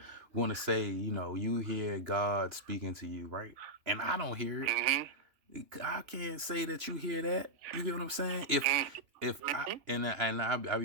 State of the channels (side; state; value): left; late; 2.9 ms